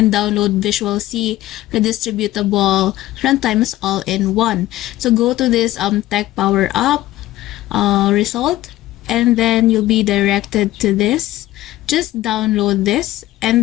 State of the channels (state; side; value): quieter; right; 15.8 dB